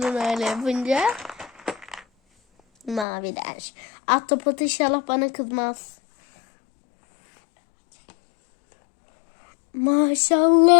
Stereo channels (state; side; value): drops out; right; at 3.1 s